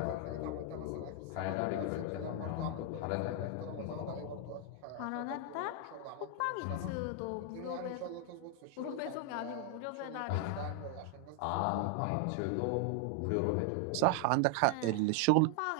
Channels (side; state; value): both; different; correlation 0.00